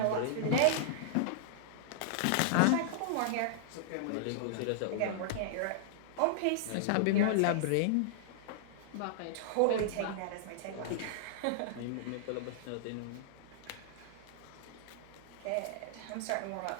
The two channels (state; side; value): different; both; correlation -0.01